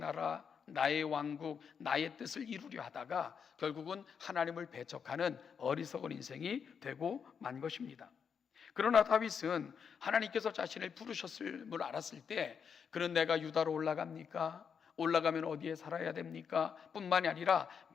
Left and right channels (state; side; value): quieter; right; 6.8 dB